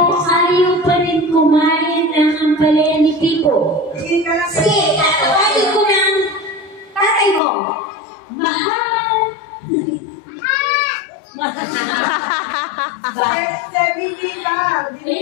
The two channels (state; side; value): drops out; right; at 7.4 s